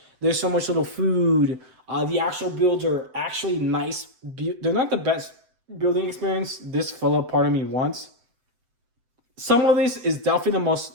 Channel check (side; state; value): left; late; 7.9 ms